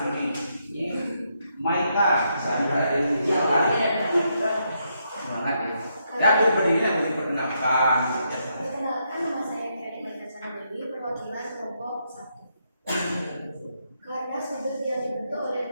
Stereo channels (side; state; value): both; inverted; correlation -0.79